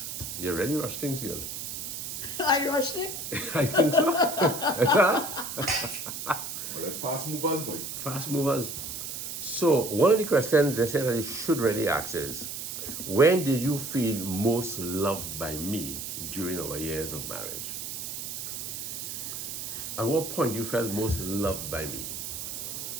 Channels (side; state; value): right; noise; hiss, 6 dB below the sound